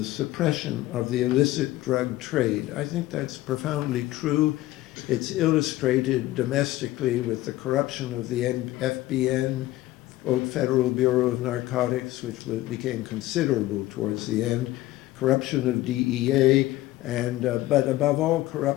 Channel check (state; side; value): quieter; right; 16.5 dB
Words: suppression of the illicit drug trade. I think that's profoundly true. It's illustrated domestically with the corruption of the FBN, Old Federal Bureau of Narcotics, which became considerable towards the end, corruption of DEA, and but above all,